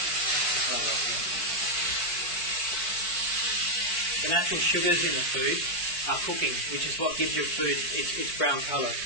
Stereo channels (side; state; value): right; late; 4.5 ms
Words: The natural sugars in the food are cooking, which is what gives your food its brown colour.